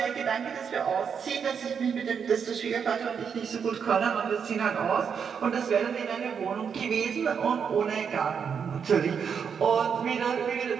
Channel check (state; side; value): quieter; left; 6.8 dB